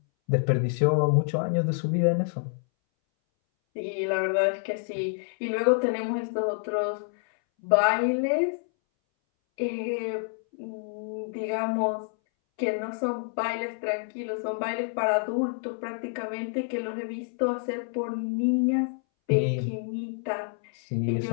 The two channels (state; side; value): silent; right; 60 dB below the other